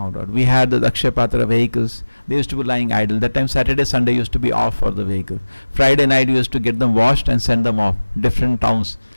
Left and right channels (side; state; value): both; inverted; correlation -1.00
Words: out. We had the Akshaya Patra vehicles. They used to be lying idle. That time Saturday, Sunday used to be off for the vehicle. Friday night we used to get them washed and send them off different towns.